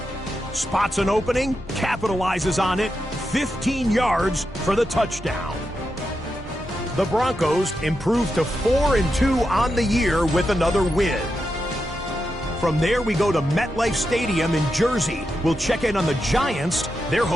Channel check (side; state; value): both; normal; correlation 0.87